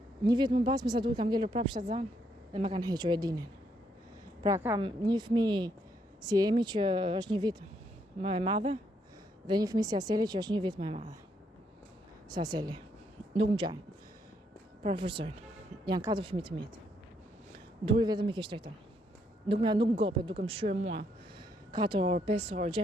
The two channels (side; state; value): both; normal; correlation 0.74